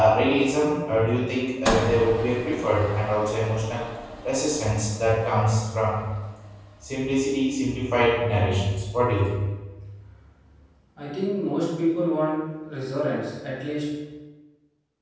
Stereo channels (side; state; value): both; identical; correlation 1.00